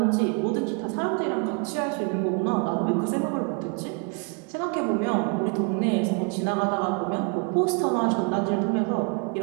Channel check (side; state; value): left; quieter; 34.0 dB